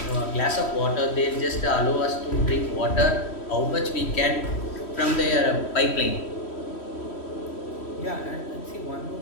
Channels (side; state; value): right; late; 3.1 ms